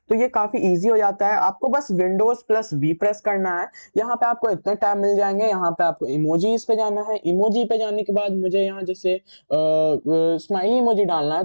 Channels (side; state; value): both; inverted; correlation -1.00